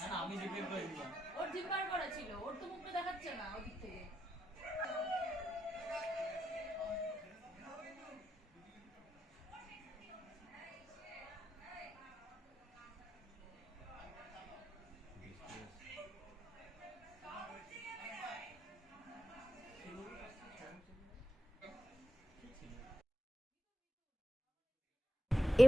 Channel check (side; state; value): both; normal; correlation 0.86